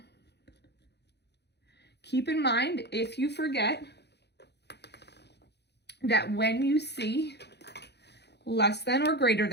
Keep in mind, if you forget, that when you see less than or greater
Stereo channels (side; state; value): right; late; 0.49 ms